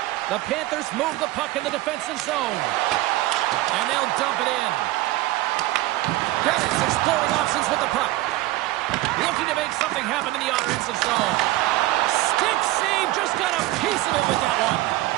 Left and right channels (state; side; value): quieter; left; 17.4 dB